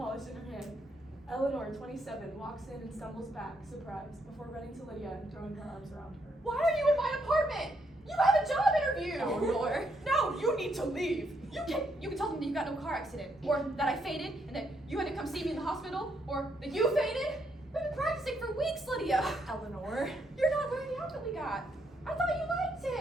in her hand. Eleanor, 27, walks in and stumbles back, surprised, before running to Lydia and throwing her arms around her. Why are you in my apartment? You have a job interview! Eleanor. No, you need to leave. You can tell them that you got in a car accident, or that I fainted, and that you had to come see me in the hospital, or that you fainted. We've been practicing for weeks, Lydia. Eleanor. You're not wearing the outfit we got. I thought you liked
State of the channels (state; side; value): normal; both; correlation 0.75